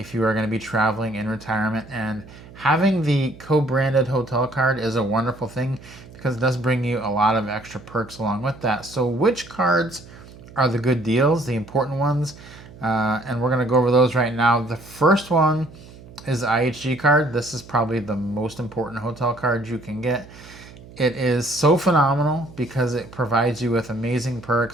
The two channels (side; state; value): right; noise; hum, 19 dB below the sound